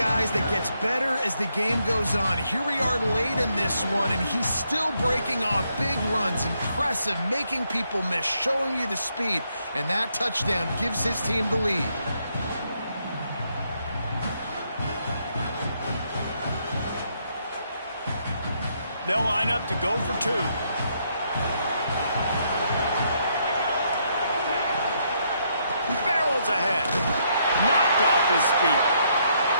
that gets better as the game goes on. Here we are late in this one, and he's still breaking off big runs. Impressive, making people miss, showing you the speed. And that touchdown gives his team the lead. They'll line up to go for 2. Barrels ahead. Knocked off his feet.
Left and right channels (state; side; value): inverted; both; correlation -0.75